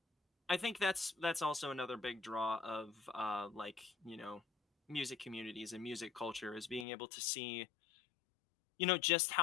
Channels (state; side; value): drops out; right; at 6.9 s